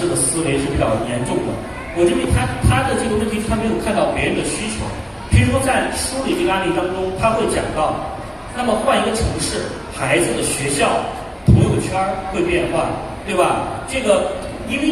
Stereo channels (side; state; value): both; identical; correlation 1.00